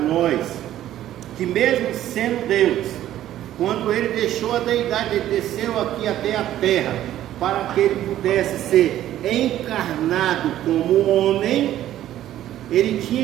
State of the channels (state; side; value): quieter; left; 12.7 dB